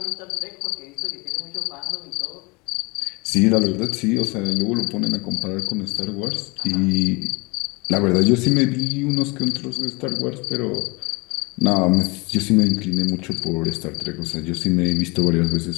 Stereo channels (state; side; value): quieter; right; 27.1 dB